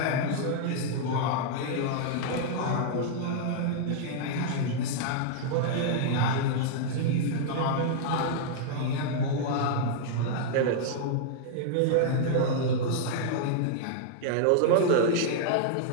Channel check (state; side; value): different; both; correlation -0.01